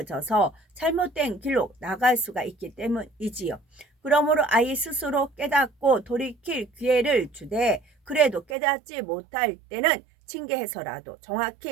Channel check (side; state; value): left; drops out; at 8.6 s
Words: 잘못된 길로 나갈 수가 있기 때문이지요. 그러므로 아이 스스로 깨닫고 돌이킬 기회를 주되 그래도 깨닫지 못할 때는 징계해서라도